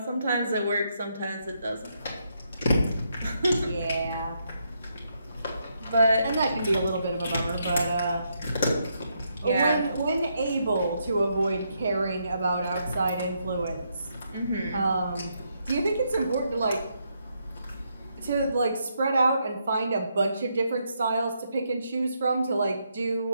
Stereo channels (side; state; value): both; inverted; correlation -0.78